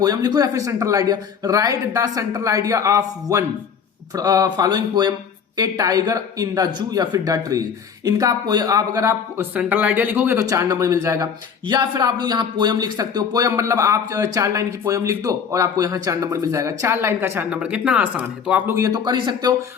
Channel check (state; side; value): quieter; right; 6.9 dB